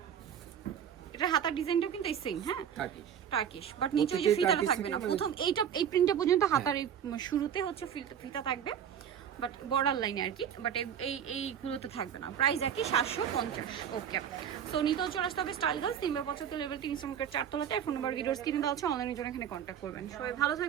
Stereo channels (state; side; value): quieter; left; 8.8 dB